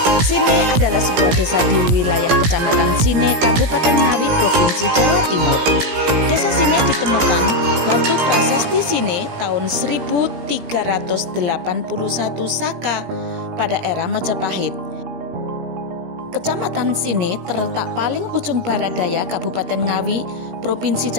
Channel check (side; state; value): left; late; 17 ms